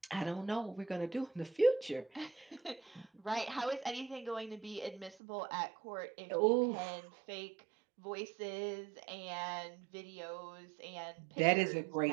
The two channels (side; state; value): left; drops out; at 5.2 s